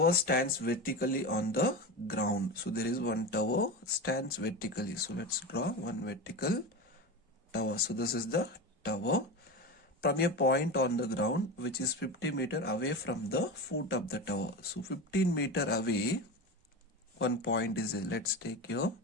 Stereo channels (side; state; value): both; normal; correlation 0.24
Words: stands vertically on the ground. So there is one tower stands vertically. So let's draw one vertical tower. So this is the tower. From a point on the ground which is 50 meter away from the foot of the tower. So 15 meter away, one point is there. Let's take here.